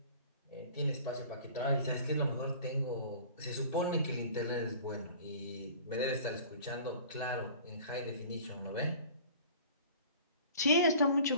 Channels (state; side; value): inverted; both; correlation -0.45